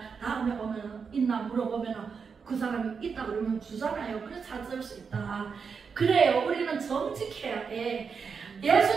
다음에 오면은 있나 물어보면은 그 사람이 있다 그러면 주잖아요. 그래서 찾을 수 있다. 그래요. 우리는 정직해야 돼.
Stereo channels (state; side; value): quieter; left; 5.8 dB